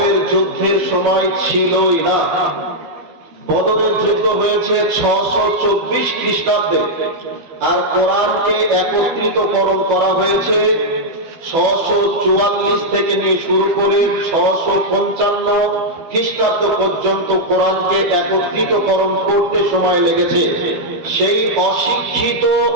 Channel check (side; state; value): left; late; 12 ms